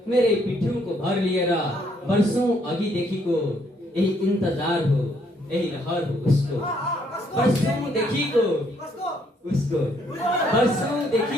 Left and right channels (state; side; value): normal; both; correlation 0.69